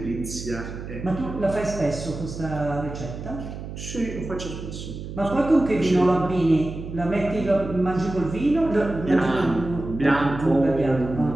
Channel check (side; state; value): right; noise; hum, 9 dB below the sound